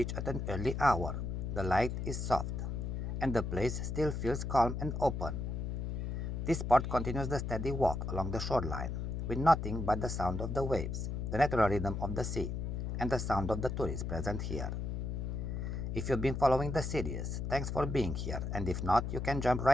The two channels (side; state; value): left; noise; hum, 3 dB below the sound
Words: at an early hour, the light is soft, and the place still feels calm and open. This part continues the steady walk along the shoreline, with nothing but the sound of the waves, the natural rhythm of the sea, and the sound of the tourists present here. If you've been following the series, thanks for being here, and if not, you can jump